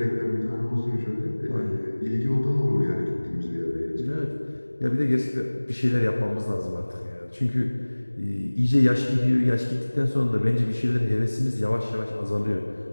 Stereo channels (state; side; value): inverted; both; correlation -1.00